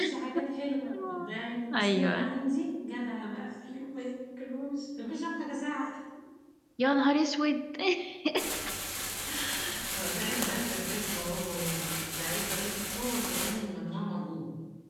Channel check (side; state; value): both; identical; correlation 1.00